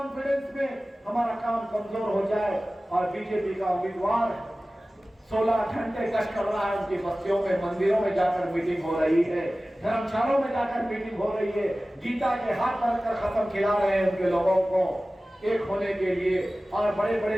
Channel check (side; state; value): both; normal; correlation 0.97